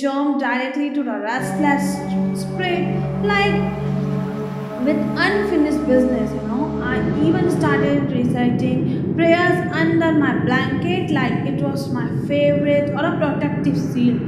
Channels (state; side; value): identical; both; correlation 1.00